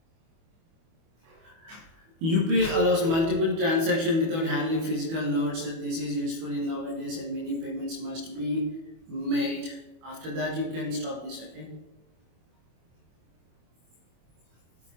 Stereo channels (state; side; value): late; left; 25 ms